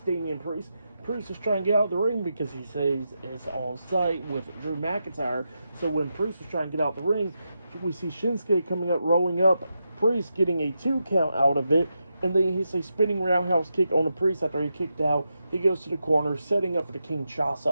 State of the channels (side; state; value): both; inverted; correlation -0.87